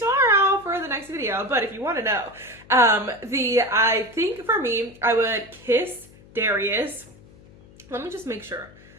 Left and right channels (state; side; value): noise; left; hum, 24 dB below the sound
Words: for the next video. But if you want to know, I think for me, I would kiss Darius. Let me just make sure.